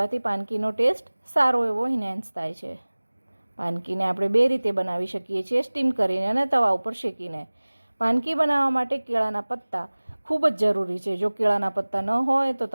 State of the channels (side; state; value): both; inverted; correlation -1.00